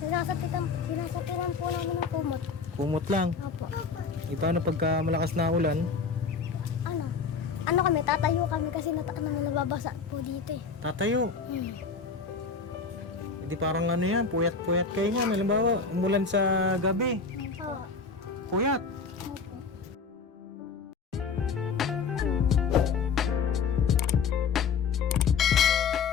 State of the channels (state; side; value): quieter; right; 5.2 dB